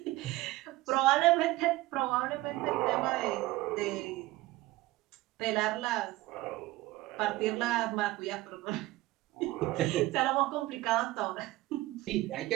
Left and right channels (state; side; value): quieter; left; 18.3 dB